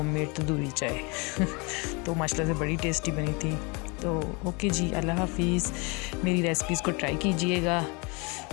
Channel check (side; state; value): right; quieter; 29.7 dB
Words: तंदूरी चाय। तो माशाल्लाह से बड़ी टेस्टी बनी थी। तो ओके जी, अल्लाह हाफिज़। मेरी रेसिपीज़ को ट्राई कीजिएगा,